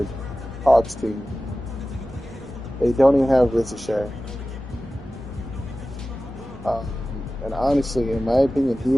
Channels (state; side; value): normal; both; correlation 0.95